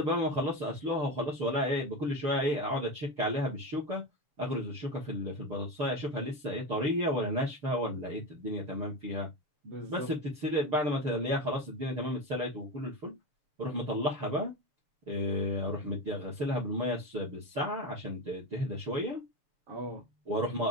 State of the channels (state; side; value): late; left; 7.1 ms